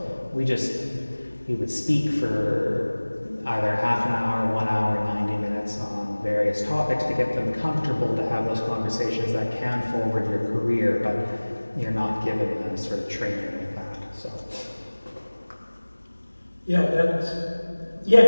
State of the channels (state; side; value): inverted; both; correlation -1.00